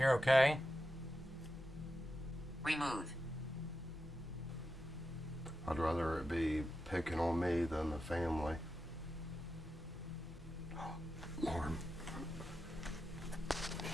okay? Remove. I'd rather it be picking on me than the family. Lord.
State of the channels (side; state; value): both; normal; correlation 0.89